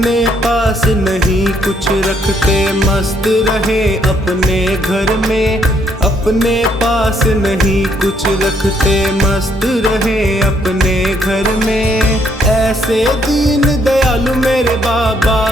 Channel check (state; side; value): normal; both; correlation 0.70